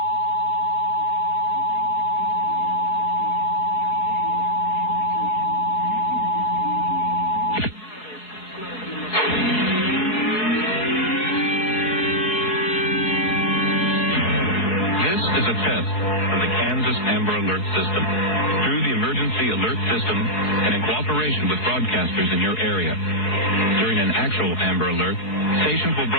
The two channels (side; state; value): right; late; 4.8 ms